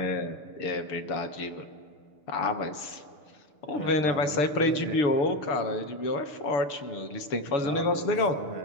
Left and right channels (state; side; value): late; right; 6.8 ms